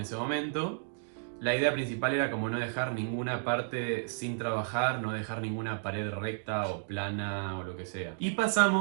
momento. La idea principal era como no dejar ninguna parte sin trabajar, no dejar ninguna pared recta o plana o lo que sea. Y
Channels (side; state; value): left; silent; digital silence